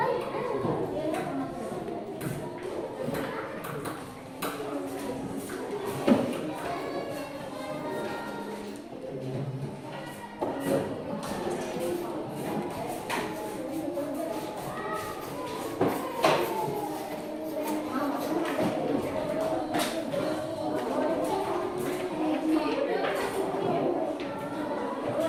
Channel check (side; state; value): both; identical; correlation 1.00